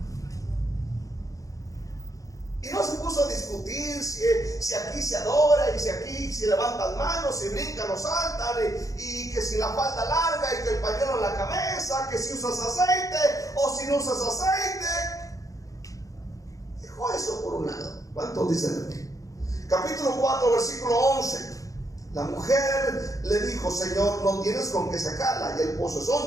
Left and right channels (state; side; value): late; right; 0.16 ms